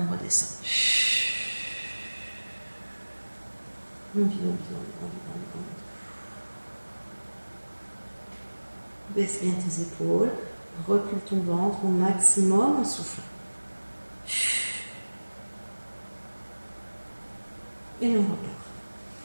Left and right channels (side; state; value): both; inverted; correlation -1.00